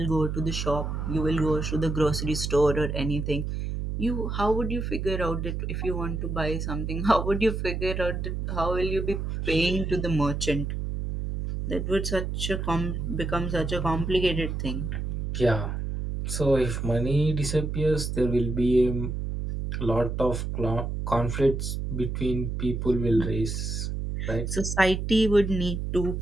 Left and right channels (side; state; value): right; noise; hum, 3 dB below the sound